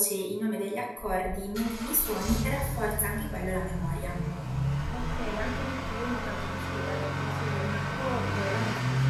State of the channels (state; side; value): identical; both; correlation 1.00